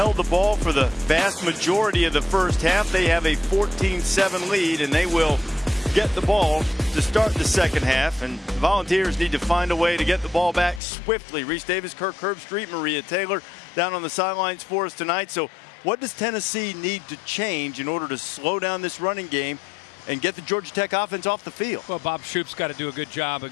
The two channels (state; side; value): drops out; right; at 10.8 s